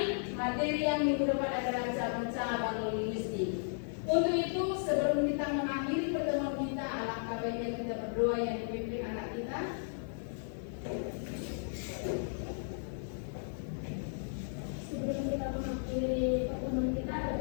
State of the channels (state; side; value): silent; right; 55 dB below the other